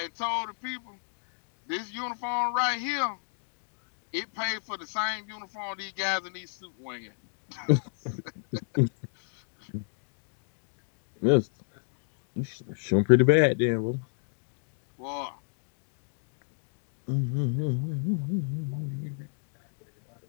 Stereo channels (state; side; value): silent; right; 57 dB below the other